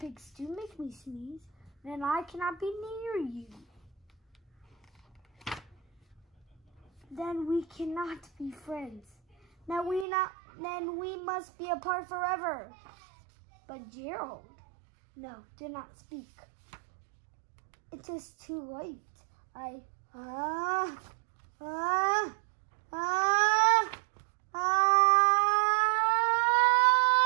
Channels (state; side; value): drops out; left; at 10.1 s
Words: do make me sneeze, then I cannot be near you. Then we cannot be friends. Then we must be apart forever. But Gerald, no, do not speak. It is too late.